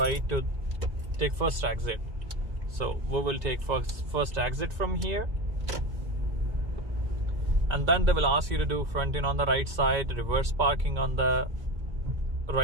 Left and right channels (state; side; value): late; left; 2.0 ms